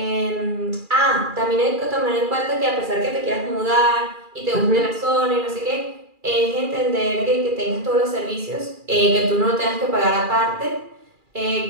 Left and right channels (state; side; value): late; left; 2.4 ms